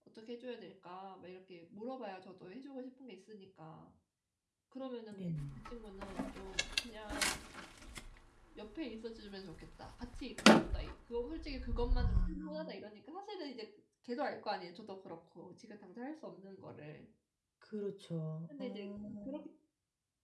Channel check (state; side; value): identical; both; correlation 1.00